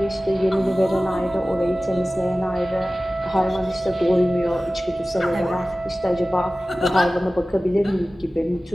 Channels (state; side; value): normal; both; correlation 0.96